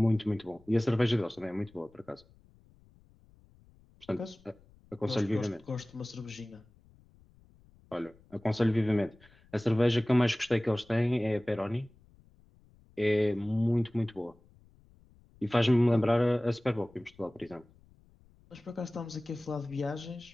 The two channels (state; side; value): noise; left; rumble, 28 dB below the sound